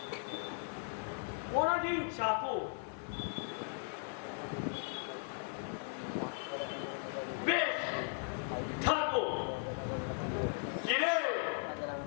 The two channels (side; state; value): right; silent; 53 dB below the other